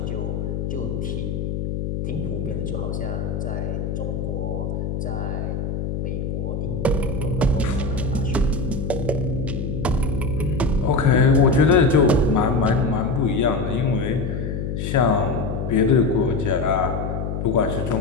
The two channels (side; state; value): left; noise; hum, 3 dB below the sound